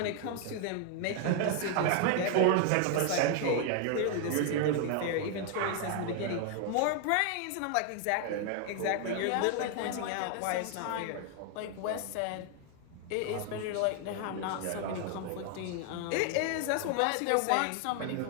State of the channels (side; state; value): both; different; correlation 0.00